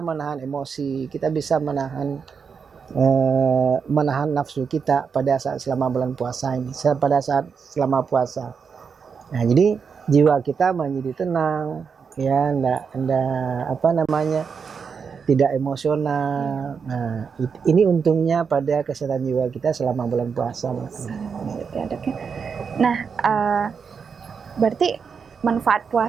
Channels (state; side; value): quieter; left; 6.0 dB